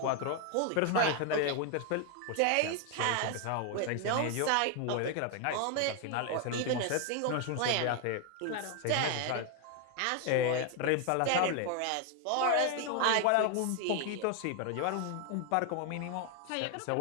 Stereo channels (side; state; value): both; different; correlation 0.01